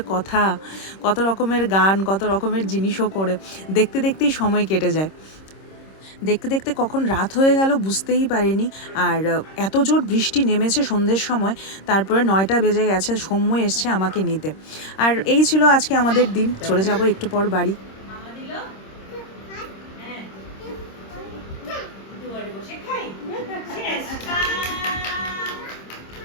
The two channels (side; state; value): right; late; 26 ms